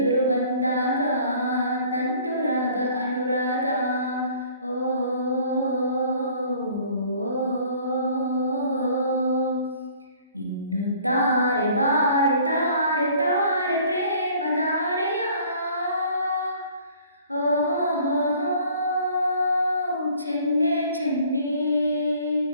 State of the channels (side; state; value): both; inverted; correlation -0.54